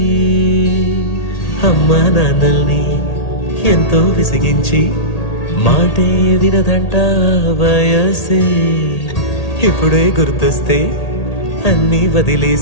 అమ్మా నాన్నల్ని ఎంతో విసిగించి మాటే వినదంట వయసే ఇప్పుడే గుర్తొస్తే అన్నీ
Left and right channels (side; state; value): right; late; 1.8 ms